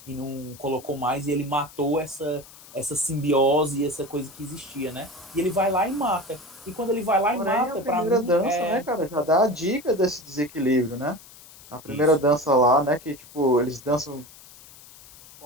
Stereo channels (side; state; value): left; noise; hiss, 21 dB below the sound